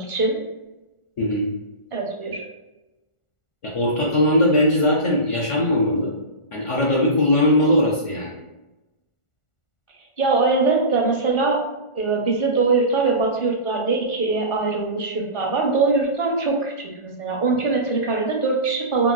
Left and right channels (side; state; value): right; late; 1.4 ms